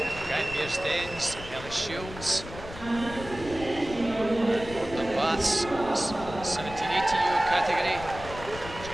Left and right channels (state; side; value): noise; left; rumble, 13 dB below the sound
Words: Guy Mears-Dens, Ellie Shields. Gordon Baths, 17, 18-year-old category,